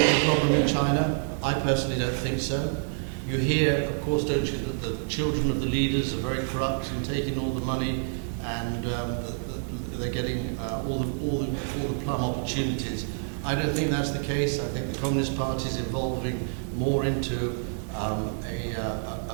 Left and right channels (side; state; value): left; silent; digital silence